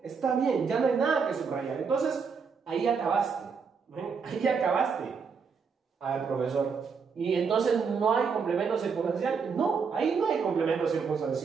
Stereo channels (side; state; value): left; quieter; 5.7 dB